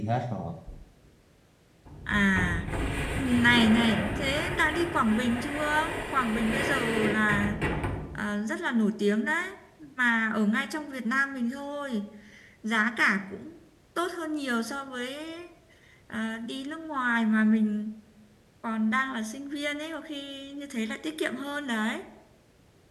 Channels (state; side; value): identical; both; correlation 1.00